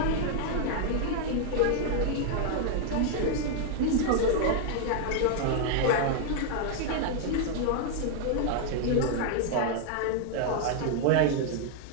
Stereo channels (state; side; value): different; both; correlation 0.00